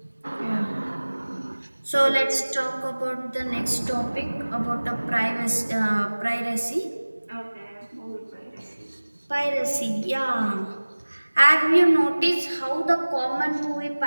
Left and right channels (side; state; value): both; inverted; correlation -1.00